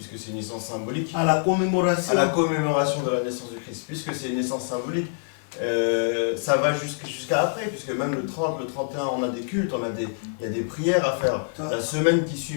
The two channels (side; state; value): right; silent; 58 dB below the other